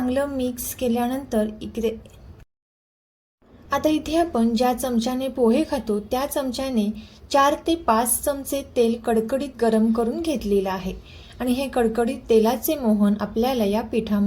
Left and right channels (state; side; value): identical; both; correlation 1.00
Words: मिक्स केल्यानंतर आता इथे आपण ज्या चमच्याने पोहे खातो त्या चमच्याने 4 ते 5 चमचे तेल कडकडीत गरम करून घेतलेलं आहे आणि हे कडकडीत तेलाचे मोहन आपल्याला या